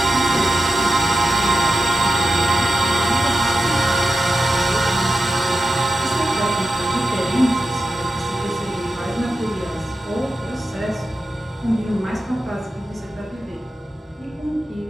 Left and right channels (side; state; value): both; normal; correlation 0.90